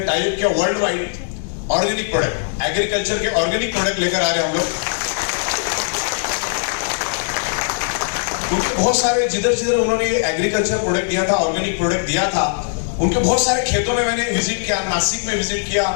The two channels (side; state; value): right; silent; digital silence